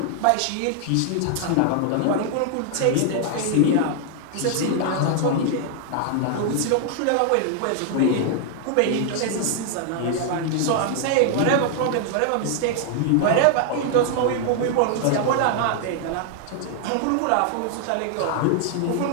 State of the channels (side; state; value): both; different; correlation 0.00